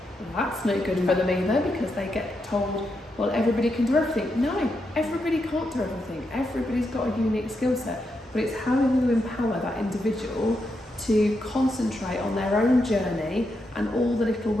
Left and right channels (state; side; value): normal; both; correlation 0.83